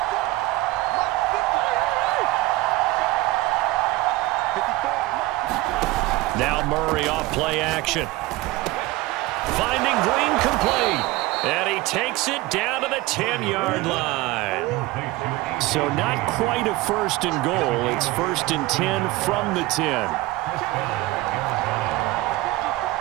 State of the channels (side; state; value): left; quieter; 19.0 dB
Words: Now Murray off play action. Finding Green complete. And he takes it down to the 10-yard line. So not quite a 1st and goal. It's 1st and 10 from the 10.